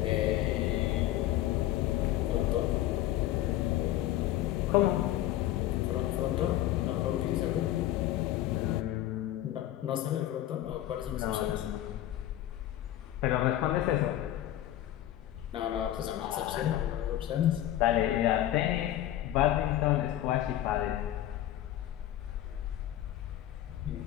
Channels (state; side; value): quieter; right; 13.3 dB